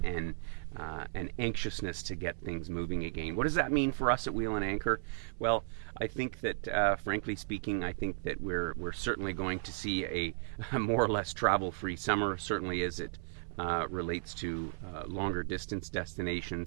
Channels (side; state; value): left; silent; 54 dB below the other